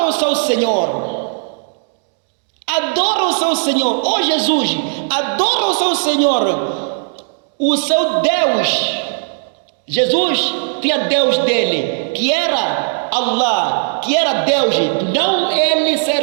o seu Senhor. Adora o seu Senhor. Oh Jesus, adora o seu Senhor, o seu Deus. Jesus tinha Deus dele, que era Allah, que era Deus, não ele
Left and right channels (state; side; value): silent; left; digital silence